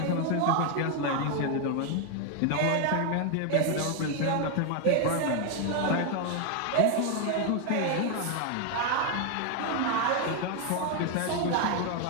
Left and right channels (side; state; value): both; different; correlation 0.01